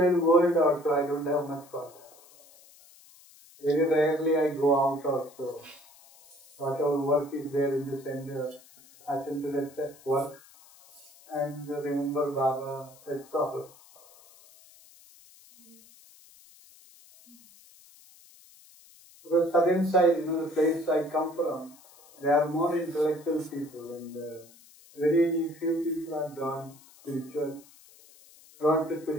world also. I don't have much contact. Very rarely I go out also. Whatever work is there in the center, attend to that work and remember Baba, that's all. Because southern side, the place I come from, there are more intellectual people and very few people are drawn to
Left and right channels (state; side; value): noise; left; hiss, 25 dB below the sound